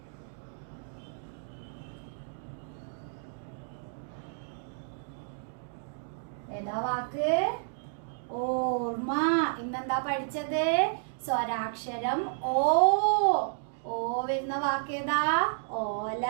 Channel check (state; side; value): silent; left; digital silence